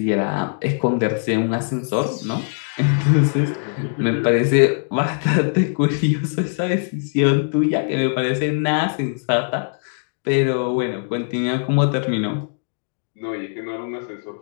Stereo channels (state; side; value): silent; right; digital silence